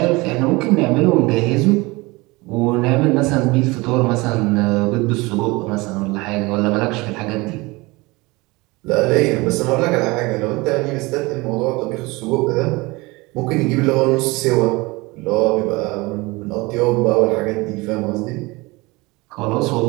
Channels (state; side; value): quieter; left; 23.4 dB